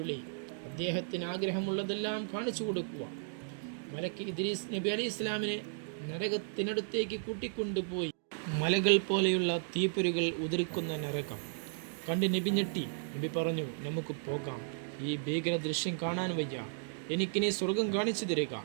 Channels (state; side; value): silent; left; digital silence